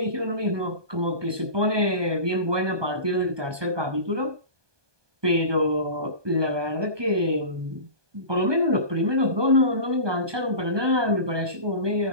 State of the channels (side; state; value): left; late; 1.2 ms